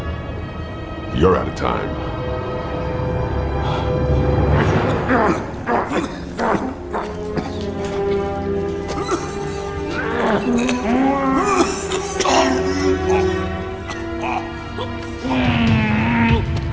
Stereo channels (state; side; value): identical; both; correlation 1.00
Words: You're out of time.